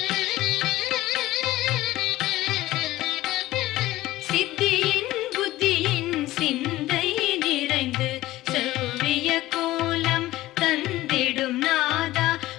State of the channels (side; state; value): right; quieter; 16.6 dB